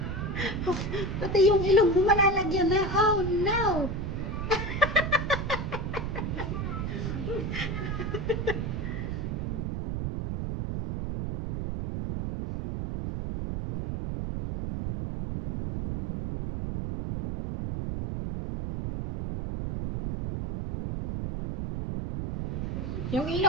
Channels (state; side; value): noise; right; rumble, 3 dB below the sound